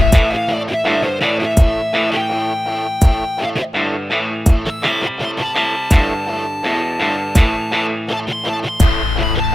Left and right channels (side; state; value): both; normal; correlation 0.93